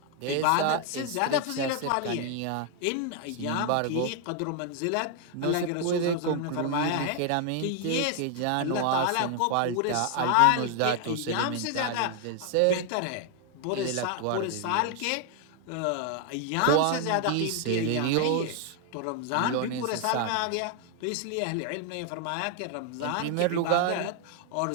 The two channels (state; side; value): different; both; correlation 0.00